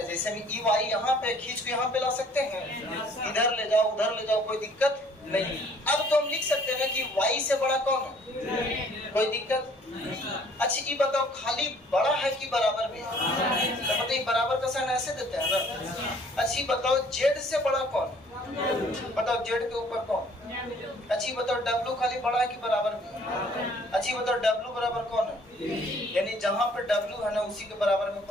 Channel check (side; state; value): both; normal; correlation 0.58